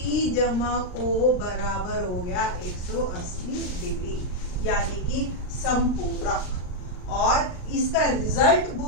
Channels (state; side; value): late; right; 39 ms